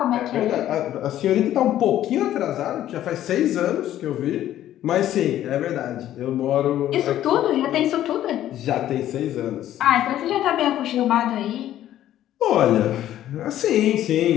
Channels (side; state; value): right; quieter; 12.4 dB